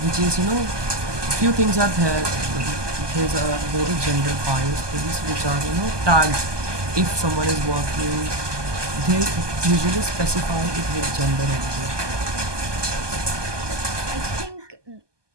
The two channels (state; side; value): late; left; 1.2 ms